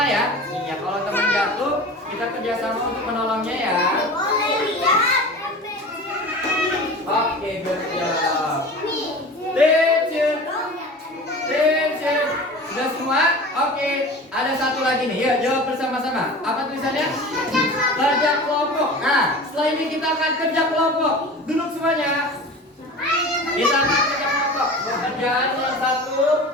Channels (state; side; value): normal; both; correlation 0.36